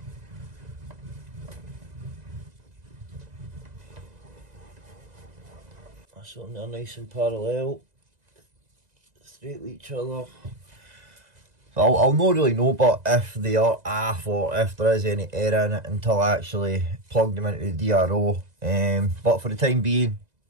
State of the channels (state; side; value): late; left; 2.0 ms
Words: That's on there nice and parallel, straight with each other. I'll not really know but if they are off or if there is any error in it until I actually plug them into the DRO. But for the time being,